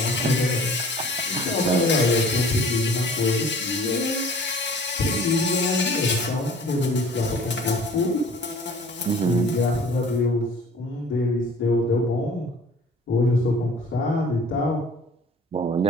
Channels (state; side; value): normal; both; correlation 0.49